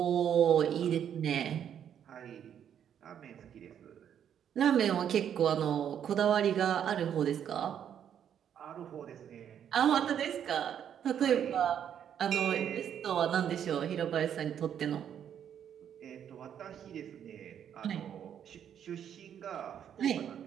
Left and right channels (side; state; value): left; quieter; 9.1 dB